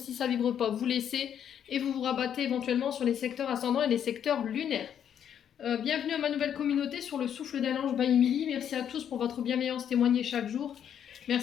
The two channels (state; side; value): quieter; right; 9.0 dB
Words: pas, vous laissez et vous vous rabattez éventuellement sur les secteurs ascendants et les secteurs lunaires. Bienvenue à ma nouvelle communauté sur le souffle d'un ange by Emily. Merci à tous pour votre bienveillance témoignée chaque jour.